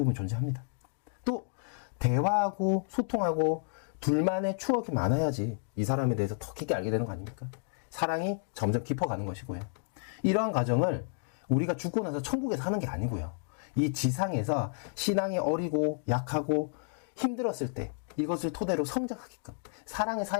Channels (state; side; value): silent; right; digital silence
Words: 존재합니다. 또 대화하고 소통하고 둘만의 추억이 많아야지 이 사람에 대해서 더 깊게 알게 되는 거 아닙니까? 사랑이 점점 깊어가는 것이고요. 이러한 과정을 우리가 죽고 나서 천국에서 하는 게 아니고요. 이 지상에서 신앙이 어리고 약하고 힘들었을 때 이것을 토대로 성장하게끔 사랑의